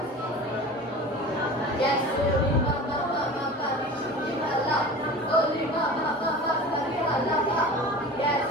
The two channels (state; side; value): normal; both; correlation 0.36